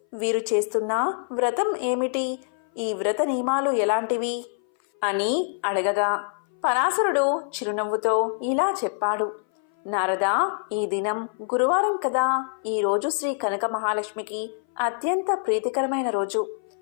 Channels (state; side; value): silent; right; 58 dB below the other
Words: వీరు చేస్తున్న వ్రతం ఏమిటి? ఈ వ్రత నియమాలు ఎలాంటివి అని అడగగా పరాశరుడు చిరునవ్వుతో ఇలా చెప్పాడు. నారదా, ఈ దినం గురువారం కదా. ఈ రోజు శ్రీ కనక మహాలక్ష్మికి అత్యంత ప్రీతికరమైన రోజు.